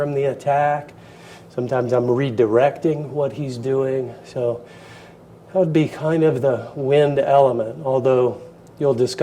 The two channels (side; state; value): both; identical; correlation 1.00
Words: the attack. Sometimes I'm redirecting what he's doing. So that would be kind of the wind element, although you'll